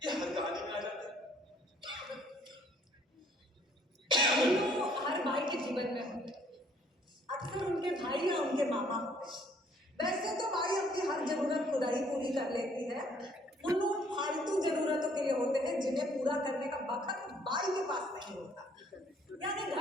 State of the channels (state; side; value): normal; both; correlation 0.62